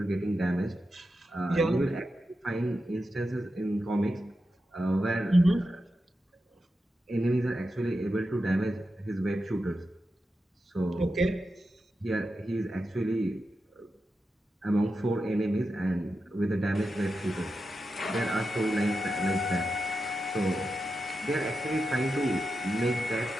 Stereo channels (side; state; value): both; normal; correlation 0.89